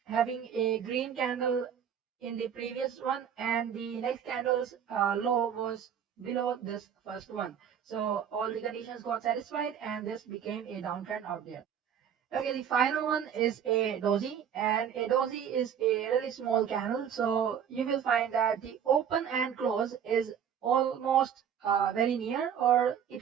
having a green candle in the previous one, and the next candle's low was below this first one. So all the conditions got satisfied, and this became a downtrend out there. Okay, the final one is a doji, and a doji is a really small candle. So you will find that the open and close is almost very near, or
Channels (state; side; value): quieter; left; 8.5 dB